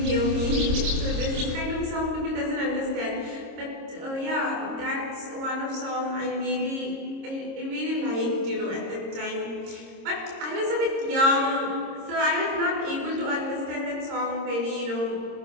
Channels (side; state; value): left; late; 26 ms